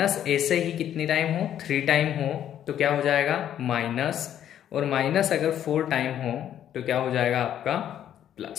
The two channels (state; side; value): quieter; right; 10.5 dB